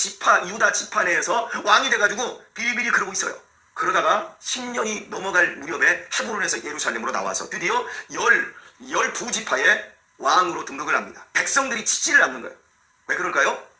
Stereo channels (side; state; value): both; identical; correlation 1.00